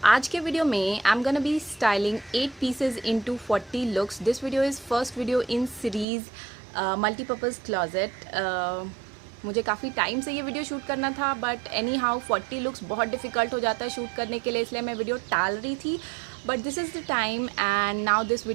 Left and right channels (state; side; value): drops out; left; at 6.1 s